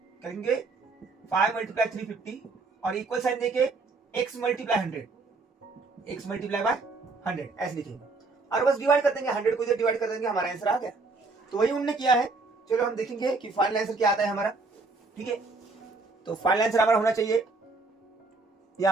करेंगे, 5 × 350 और इक्वल साइन देके x × 100, x × 100 ऐसे लिखेंगे, और बस डिवाइड कर देंगे, 100 को इधर डिवाइड कर देंगे, हमारा आंसर आ गया। तो वही उन्होंने किया है। चलो हम देखेंगे कि फाइनल आंसर क्या आता है हमारा, ठीक है। तो फाइनल आंसर हमारा होना चाहिए,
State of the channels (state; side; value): quieter; left; 3.7 dB